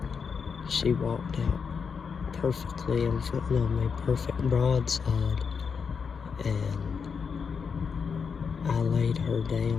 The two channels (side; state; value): right; quieter; 6.0 dB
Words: she walked out perfectly in front of me, perfect broadside. And I laid her